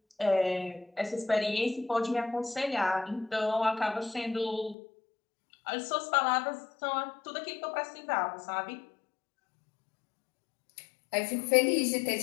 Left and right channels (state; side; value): drops out; right; at 4.8 s